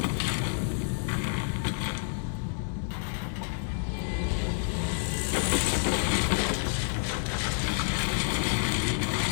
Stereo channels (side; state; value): right; silent; digital silence